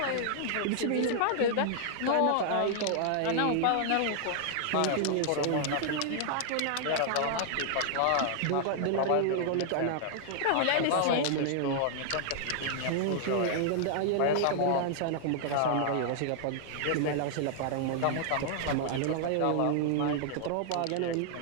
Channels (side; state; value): both; different; correlation 0.00